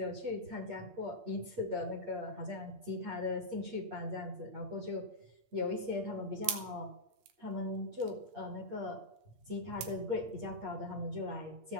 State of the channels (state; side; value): late; left; 8.5 ms